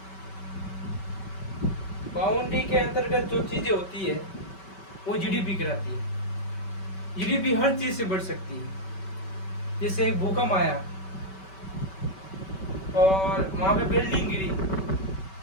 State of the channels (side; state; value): right; late; 5.2 ms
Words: बाउंड्री के अंतर्गत जो चीजें होती है वो जीडीपी कहलाती है। जीडीपी हर चीज से बढ़ सकती है। जैसे एक भूकंप आया और वहां पे बिल्डिंग गिरी